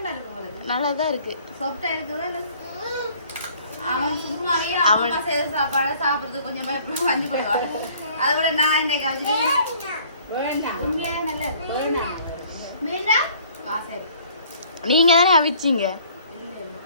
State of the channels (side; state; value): both; inverted; correlation -0.56